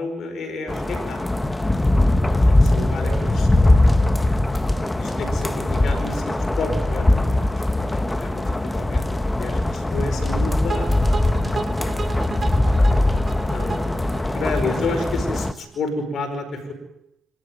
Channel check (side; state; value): both; normal; correlation 0.95